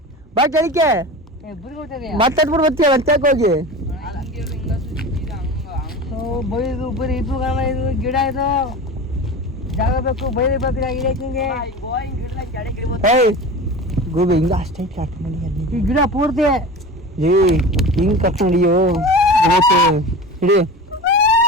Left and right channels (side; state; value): both; normal; correlation 0.32